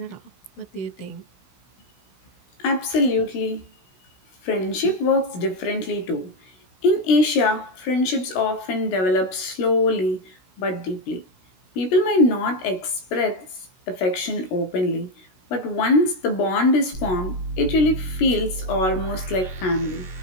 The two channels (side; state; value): right; late; 16 ms